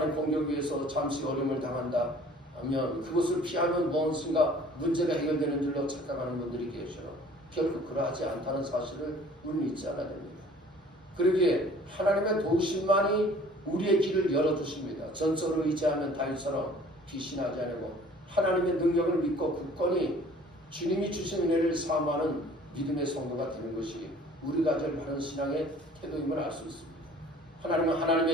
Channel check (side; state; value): both; normal; correlation 0.51